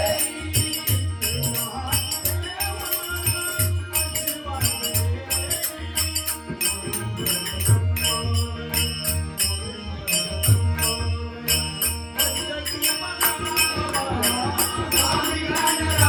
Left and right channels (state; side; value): identical; both; correlation 1.00